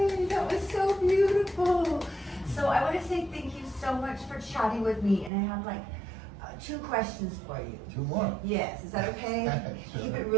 That was so beautiful. So I want to say thank you so much for chatting with me, and I have like 2 questions for you. 2 more. Yes, is that okay? Sure. Keep it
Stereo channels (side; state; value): left; drops out; at 5.3 s